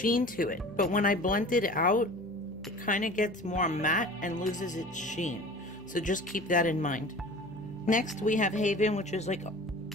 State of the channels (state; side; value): noise; left; hum, 25 dB below the sound